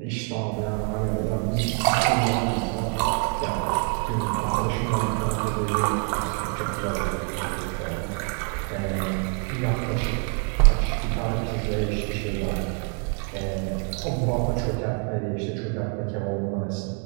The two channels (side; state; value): left; quieter; 39.7 dB